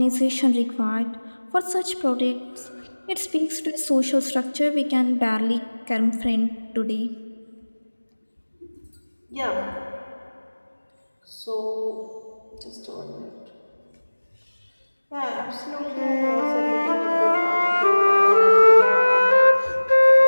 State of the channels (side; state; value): both; inverted; correlation -1.00